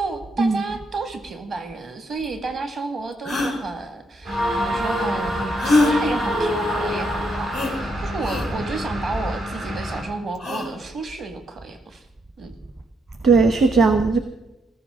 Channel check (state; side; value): normal; both; correlation 0.77